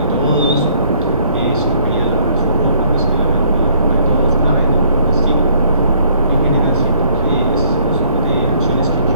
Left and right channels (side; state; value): both; inverted; correlation -0.62